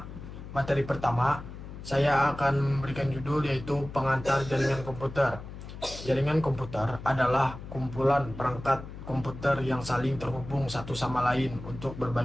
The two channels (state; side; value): noise; left; hum, 12 dB below the sound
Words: saya akan memberikan judul yaitu pengantar jaringan komputer. Jaringan komputer adalah kumpulan perangkat komputer yang saling terhubung satu sama lain untuk